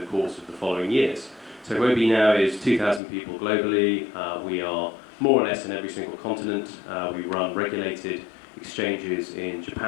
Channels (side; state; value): right; drops out; at 3.0 s